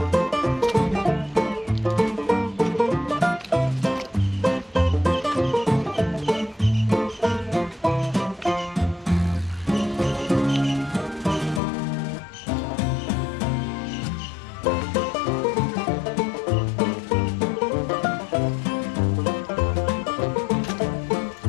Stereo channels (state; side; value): drops out; right; at 11.6 s